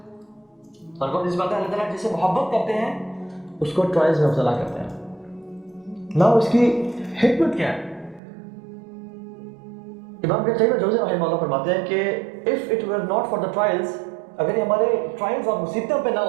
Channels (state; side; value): drops out; left; at 8.2 s